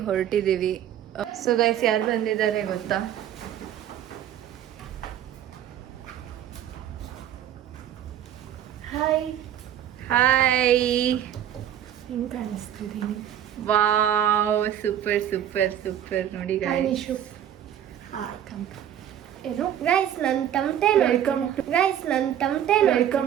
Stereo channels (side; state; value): left; quieter; 10.5 dB